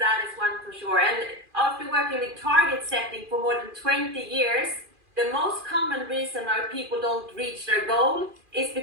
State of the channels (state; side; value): late; left; 2.4 ms